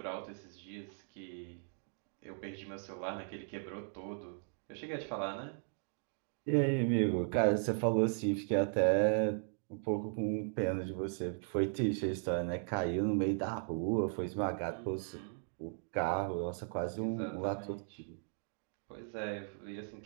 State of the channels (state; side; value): silent; left; 53 dB below the other